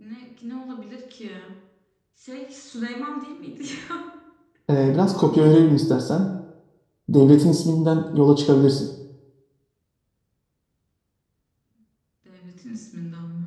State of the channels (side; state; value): both; identical; correlation 1.00